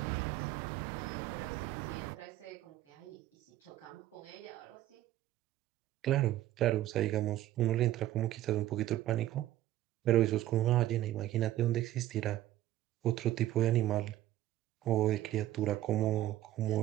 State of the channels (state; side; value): quieter; left; 14.1 dB